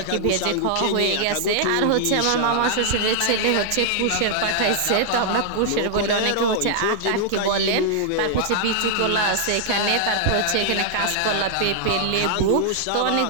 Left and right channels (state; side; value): different; both; correlation -0.01